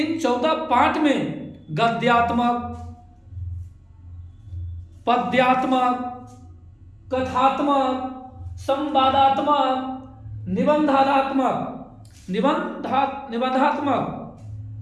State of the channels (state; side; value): identical; both; correlation 1.00